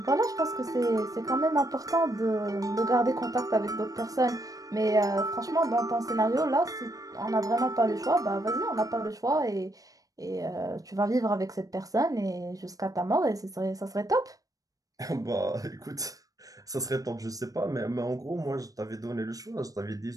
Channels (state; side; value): late; left; 0.17 ms